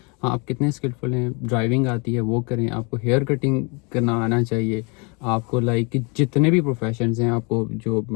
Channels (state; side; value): quieter; right; 32.3 dB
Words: ہاں آپ کتنے اسکلفل ہیں، ڈرائیونگ آتی ہے وہ کریں، آپ کو ہیئر کٹنگ کرنا آنا چاہیے، آپ کو لائک کہ جتنے بھی پروفیشنز ہیں، آپ کو جو